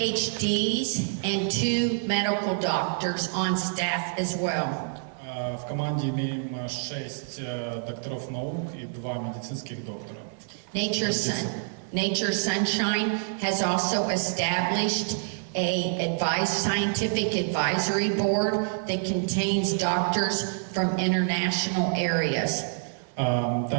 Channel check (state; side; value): silent; left; 60 dB below the other